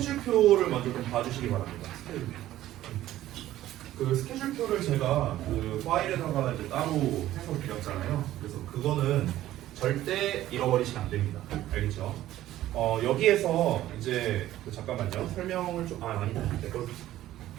먼저 좀 봐주시기 바랍니다. 스케줄표. 그 스케줄표를 제가 그 파일에다가 이제 따로 해서 드렸잖아요. 그래서 그거는 절대 잃어버리시면 안 됩니다. 알겠죠? 여기에서 이제 잠깐만요. 설명을 좀 아니다. 내 걸.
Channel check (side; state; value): left; quieter; 14.0 dB